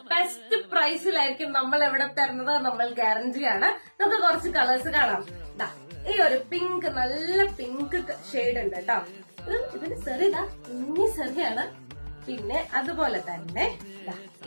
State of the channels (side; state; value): both; inverted; correlation -1.00